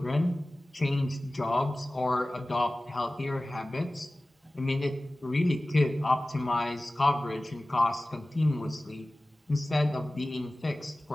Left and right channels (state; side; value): normal; both; correlation 0.97